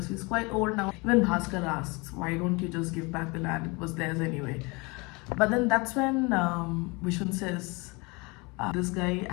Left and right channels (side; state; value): right; quieter; 27.3 dB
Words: he's quite old now. Even Bhaskar asks, why don't you just give back the land? It was theirs anyway. But then that's when Vishwan says, this guy